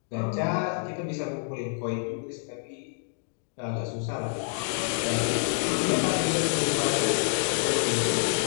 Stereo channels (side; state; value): right; silent; 60 dB below the other